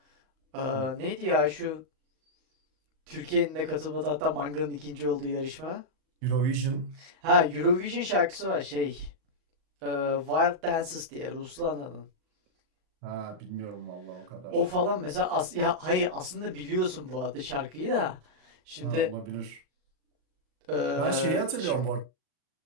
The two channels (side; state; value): left; late; 38 ms